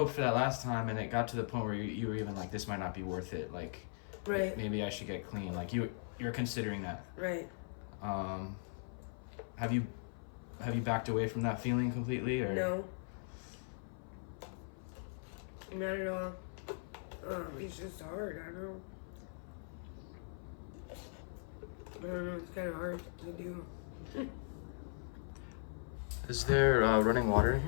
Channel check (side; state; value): right; silent; 51 dB below the other